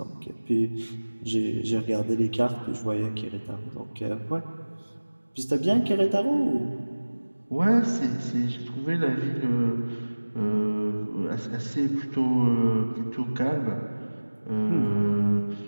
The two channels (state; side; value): inverted; both; correlation -1.00